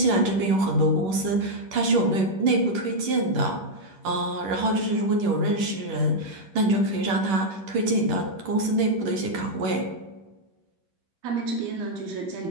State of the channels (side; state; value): left; late; 10 ms